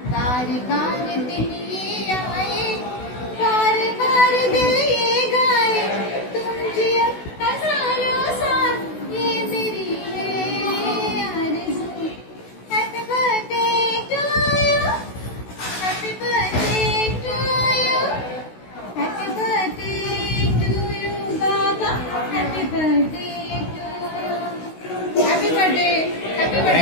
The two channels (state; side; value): late; right; 16 ms